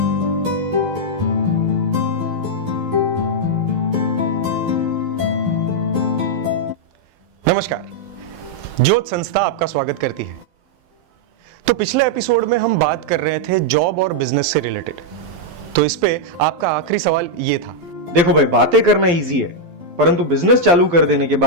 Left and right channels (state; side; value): late; left; 12 ms